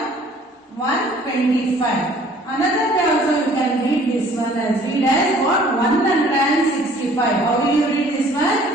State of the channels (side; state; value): both; normal; correlation 0.54